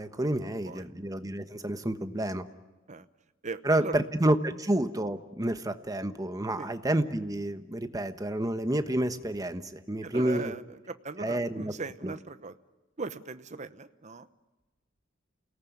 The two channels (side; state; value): both; normal; correlation 0.77